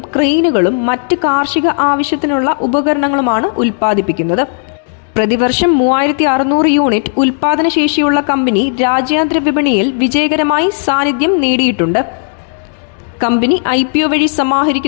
ക്രെയിനുകളും മറ്റ് കാർഷിക ആവശ്യത്തിനുള്ള ഉപകരണങ്ങളുമാണ് ഉൽപ്പാദിപ്പിക്കുന്നത്. പ്രതിവർഷം 3600 യൂണിറ്റ് ഉൽപാദനശേഷിയുള്ള കമ്പനി രാജ്യാന്തര വിപണിയിൽ വിജയകരമായി സാന്നിധ്യം നേടിയിട്ടുണ്ട്. കമ്പനി IPO വഴി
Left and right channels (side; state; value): right; silent; digital silence